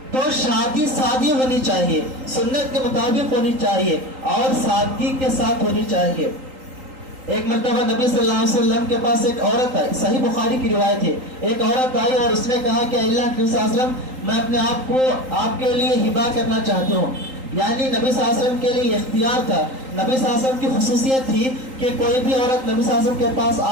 تو شادی سادی ہونی چاہیے، سنت کے مطابق ہونی چاہیے، اور سادگی کے ساتھ ہونی چاہیے۔ ایک مرتبہ نبی صلی اللہ علیہ وسلم کے پاس ایک عورت آئی، صحیح بخاری کی روایت ہے، ایک عورت آئی اور اس نے کہا کہ اللہ کے صلی اللہ علیہ وسلم، میں اپنے آپ کو آپ کے لیے ہبہ کرنا چاہتی ہوں۔ یعنی نبی صلی اللہ علیہ وسلم کے لیے اختیار تھا، نبی صلی اللہ علیہ وسلم کی خصوصیت تھی کہ کوئی بھی عورت نبی صلی اللہ علیہ وسلم کے پاس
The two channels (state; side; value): late; left; 3.8 ms